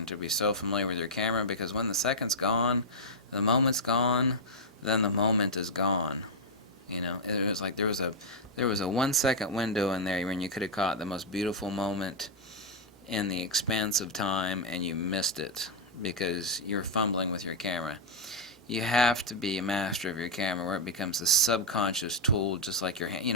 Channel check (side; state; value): both; normal; correlation -0.04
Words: to be so familiar with your camera, because when the second's gone, the moment's gone, then the moment is gone. You know, it was like there was a 1 second window in there when you could have caught the most beautiful moment in the expanse of time and you missed it because you're fumbling with your camera. You have to be a master of your camera where it becomes a subconscious tool, just like your hand. You